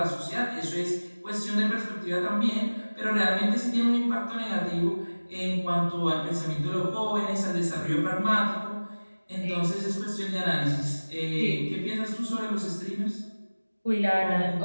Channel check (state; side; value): inverted; both; correlation -1.00